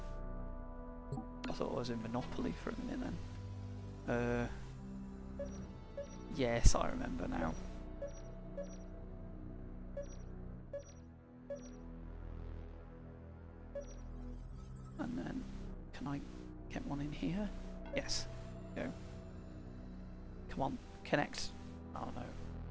I thought I was in Monopoly for a minute then. Yes, I remember now. And then, can I get one in here? Yes. Go. Come on, connect. Oh no.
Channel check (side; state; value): both; identical; correlation 1.00